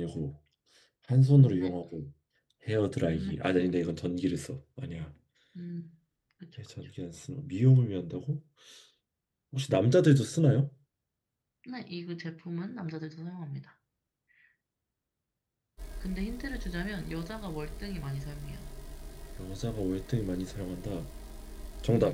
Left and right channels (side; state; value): both; identical; correlation 1.00